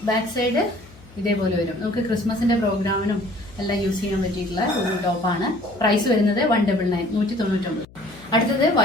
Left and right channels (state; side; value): noise; left; hum, 23 dB below the sound